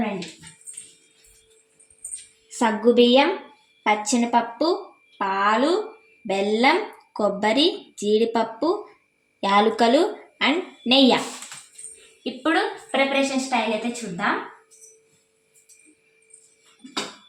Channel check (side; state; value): both; identical; correlation 1.00